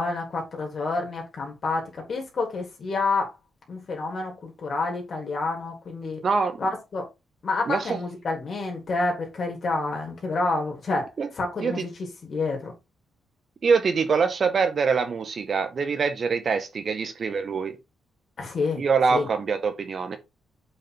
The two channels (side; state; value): both; normal; correlation 0.81